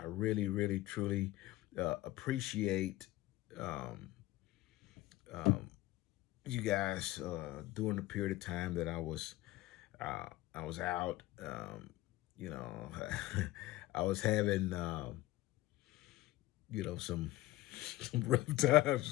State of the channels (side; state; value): right; quieter; 17.1 dB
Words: really, really, truly appreciate um, um, you guys during the period of time that I was out. You know, I was having some some rough